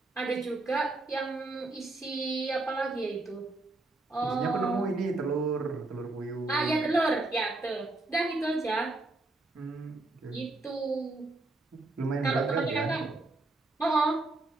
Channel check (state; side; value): quieter; left; 3.1 dB